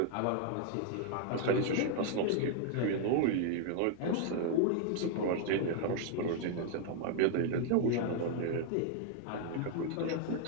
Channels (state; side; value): different; both; correlation 0.00